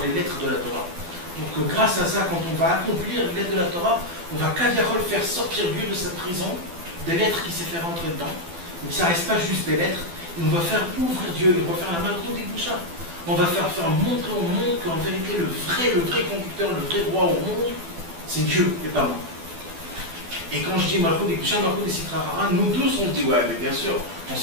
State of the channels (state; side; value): late; left; 12 ms